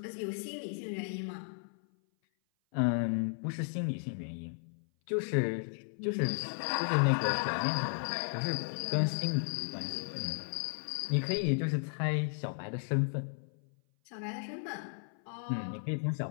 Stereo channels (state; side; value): silent; right; 55 dB below the other